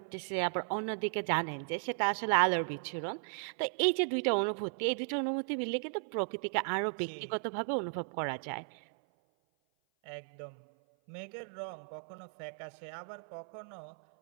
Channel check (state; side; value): silent; left; 54 dB below the other